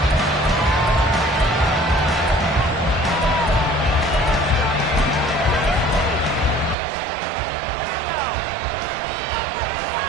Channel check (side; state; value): left; drops out; at 6.8 s